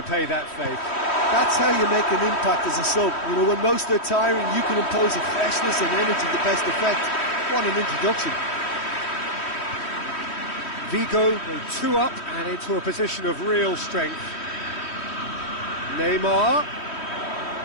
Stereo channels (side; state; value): right; late; 3.1 ms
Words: that faith. That's how you make an impact as a sub. You know, when most are tiring, you can impose a freshness and energy to best effect. What an introduction. Vigo go 2 up and into a position of real strength. Neymar.